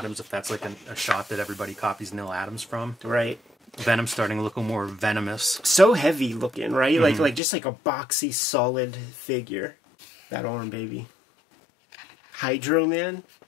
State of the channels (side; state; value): right; drops out; at 7.4 s